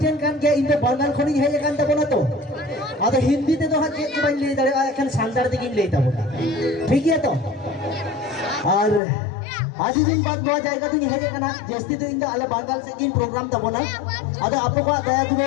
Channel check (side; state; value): right; drops out; at 9.0 s